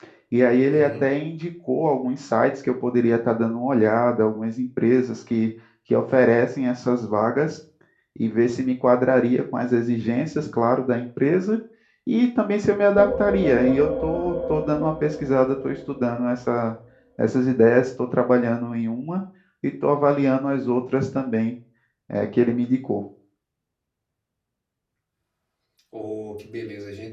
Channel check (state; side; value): identical; both; correlation 1.00